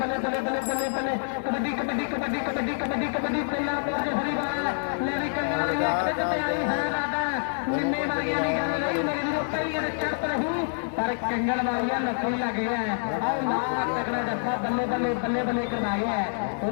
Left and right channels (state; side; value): silent; right; digital silence